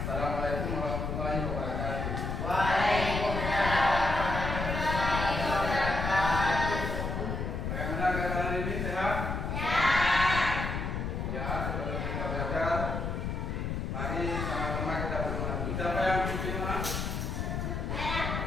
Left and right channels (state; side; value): noise; left; rumble, 2 dB below the sound